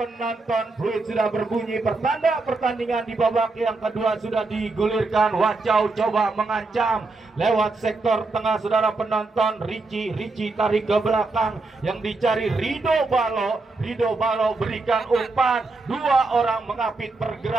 fluid sudah berbunyi, pertanda pertandingan di babak yang kedua sudah digulirkan. Wacau coba mengancam lewat sektor tengah saudara penonton. Ricci tarik ke belakang, yang dicari Rido Balo berikan umpan. Dua orang mengapit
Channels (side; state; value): left; quieter; 3.5 dB